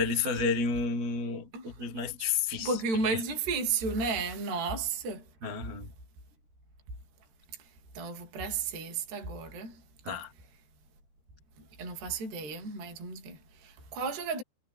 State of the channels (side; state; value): left; late; 13 ms